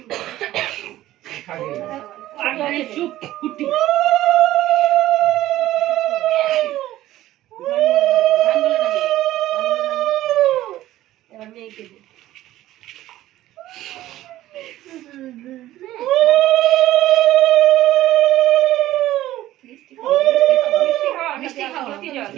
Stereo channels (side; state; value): left; quieter; 14.8 dB